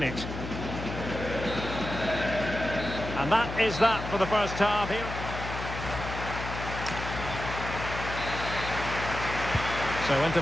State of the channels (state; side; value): noise; left; hum, 7 dB below the sound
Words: And that is that for the first half here. So into